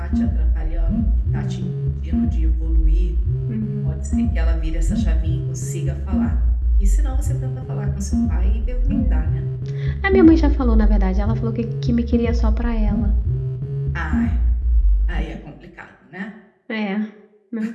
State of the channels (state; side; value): identical; both; correlation 1.00